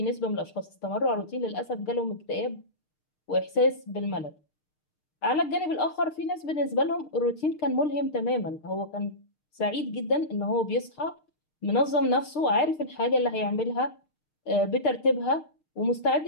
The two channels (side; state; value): right; late; 6.6 ms